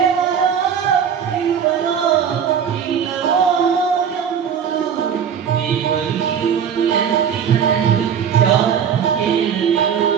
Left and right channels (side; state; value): left; quieter; 7.8 dB